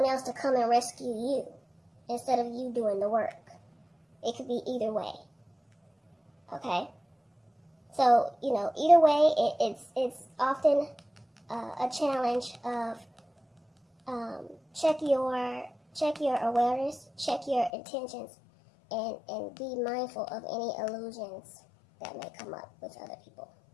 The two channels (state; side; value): drops out; right; at 17.7 s